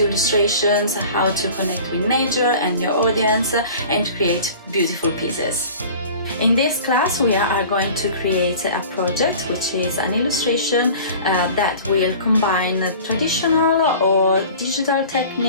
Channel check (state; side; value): inverted; both; correlation -0.42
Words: illustrations, how to connect with nature and your audience, and create beautiful pieces. In this class, we are going to create a project which is an illustration that will combine traditional or digital